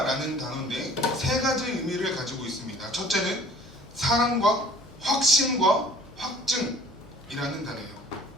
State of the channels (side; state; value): both; normal; correlation 0.51